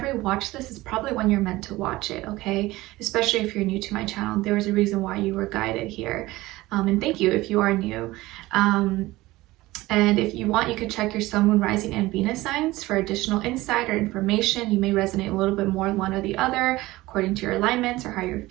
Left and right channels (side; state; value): left; quieter; 18.7 dB